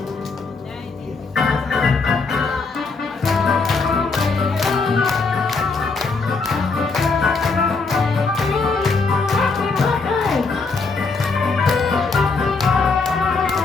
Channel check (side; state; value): right; quieter; 4.2 dB